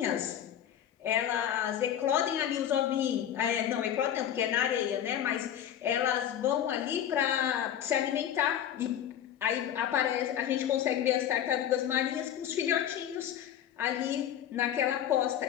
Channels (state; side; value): quieter; right; 10.2 dB